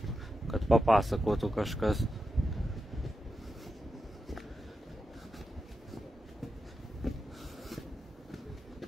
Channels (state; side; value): normal; both; correlation 0.89